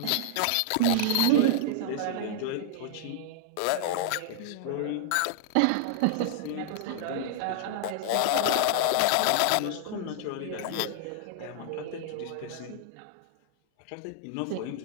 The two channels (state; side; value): different; both; correlation -0.01